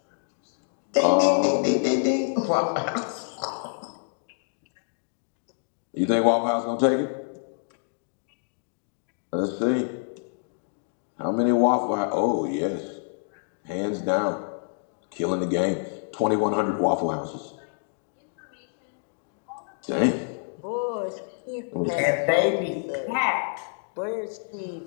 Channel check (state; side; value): silent; right; digital silence